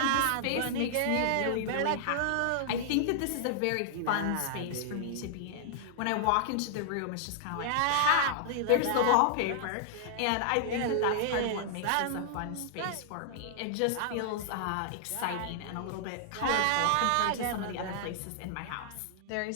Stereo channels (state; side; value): different; both; correlation -0.01